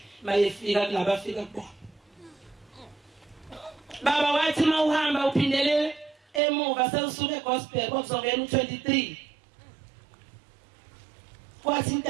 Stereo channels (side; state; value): left; drops out; at 6.4 s